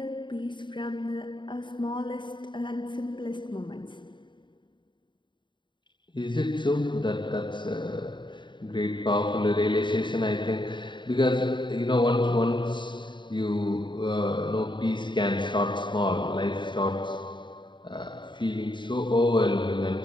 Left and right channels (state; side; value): late; right; 0.23 ms